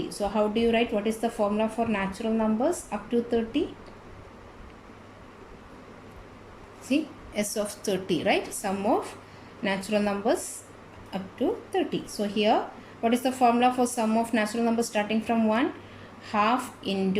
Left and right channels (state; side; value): identical; both; correlation 1.00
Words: So how do you write? What is the formula for natural numbers up to 30? See, S of 30, right? Sum of natural numbers up to 30. So here, what is the formula for sum of natural numbers starting from 1? Half